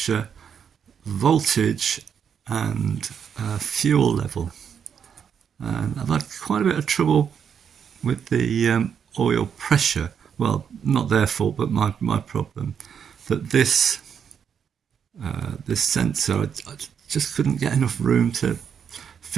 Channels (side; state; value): left; quieter; 7.5 dB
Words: voltage and fuel level. And I've had quite a bit of trouble with the oil pressure. Well, not their fault, but my problem. That this sensor, I just couldn't get enough room to